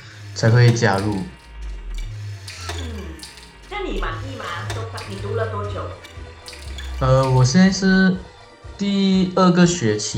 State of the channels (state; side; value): identical; both; correlation 1.00